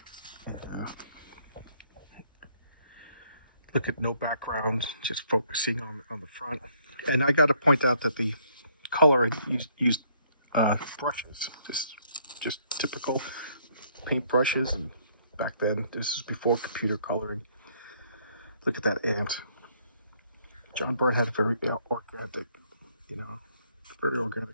And, look at no background, just focusing on the front. And I got to point out that the color used brushes, just typical paint brushes. And back then, this is before computer coloring. Look at that ant. John Byrne had a very organic, very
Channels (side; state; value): both; inverted; correlation -0.67